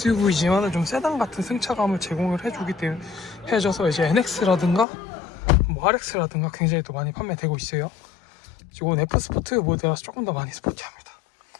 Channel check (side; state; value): right; drops out; at 4.9 s